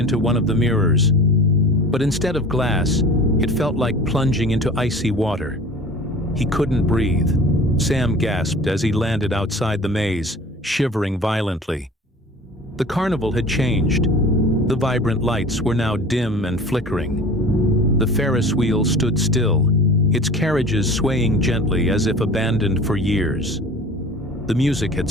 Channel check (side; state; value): both; normal; correlation 0.42